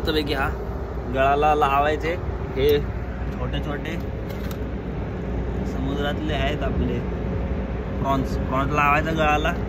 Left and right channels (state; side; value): identical; both; correlation 1.00